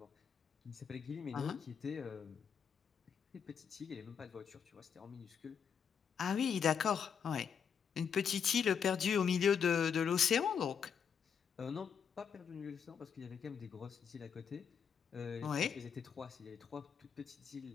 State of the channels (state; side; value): quieter; right; 7.2 dB